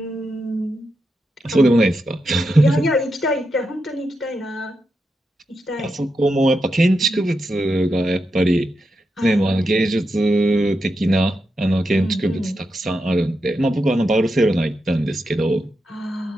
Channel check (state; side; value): normal; both; correlation 0.86